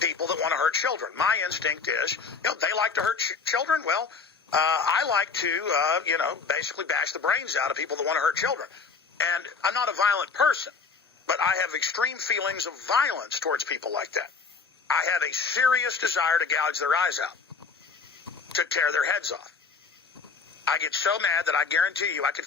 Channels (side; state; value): right; quieter; 5.1 dB